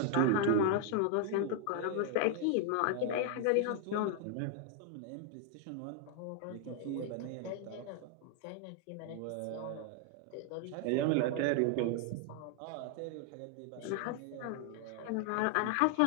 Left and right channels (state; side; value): different; both; correlation 0.00